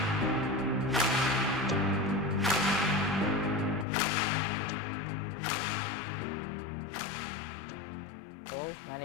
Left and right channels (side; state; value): right; drops out; at 3.9 s